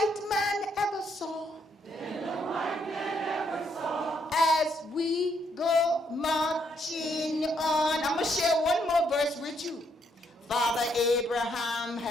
man ever saw. Than the white man ever saw. As we go marching on. I'm going to share one more verse with you. Father Abraham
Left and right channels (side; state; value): both; normal; correlation 0.73